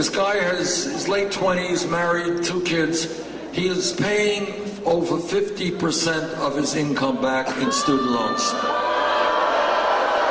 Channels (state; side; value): identical; both; correlation 1.00